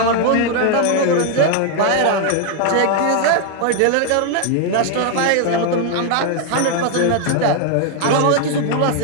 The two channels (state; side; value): different; both; correlation 0.00